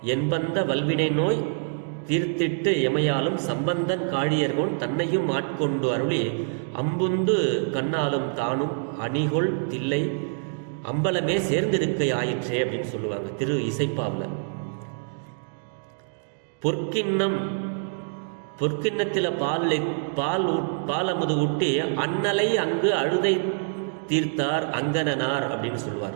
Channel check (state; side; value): silent; left; digital silence